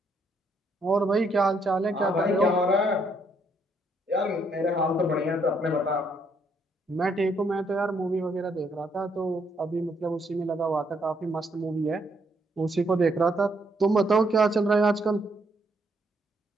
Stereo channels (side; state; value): both; normal; correlation 0.72